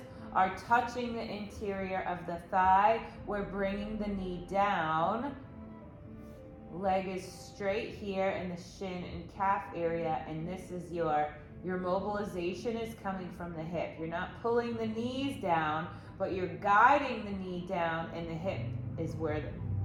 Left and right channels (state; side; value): identical; both; correlation 1.00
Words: are touching the interior of the thigh. We're bringing the knee down. Leg is straight here in the shin and calf area, and this is your mobilization is coming from the hip. You're not pulling the knees down, but you're guiding the knee down, and the hip is where